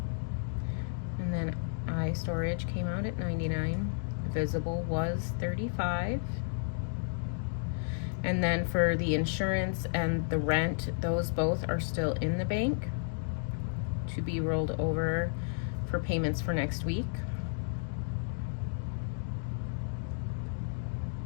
And then iStorage came out at $99. Visible was $35. And then for the insurance and the rent, those both are still in the bank to be rolled over for payments for next week.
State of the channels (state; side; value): silent; right; digital silence